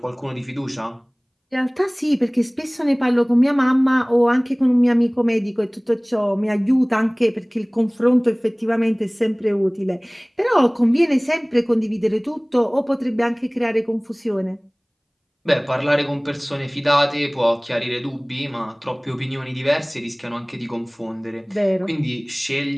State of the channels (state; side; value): identical; both; correlation 1.00